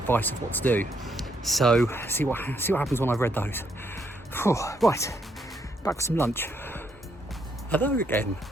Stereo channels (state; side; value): normal; both; correlation 0.74